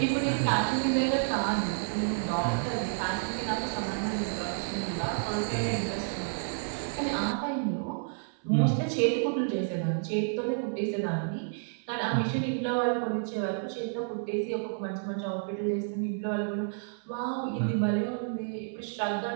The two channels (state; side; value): silent; left; 58 dB below the other